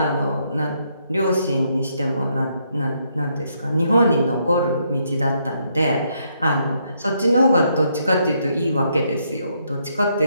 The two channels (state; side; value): inverted; both; correlation -0.75